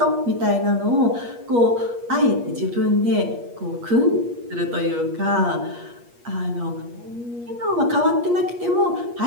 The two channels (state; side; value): late; left; 8.4 ms